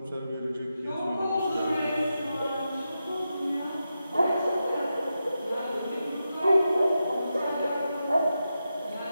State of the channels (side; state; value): both; inverted; correlation -0.89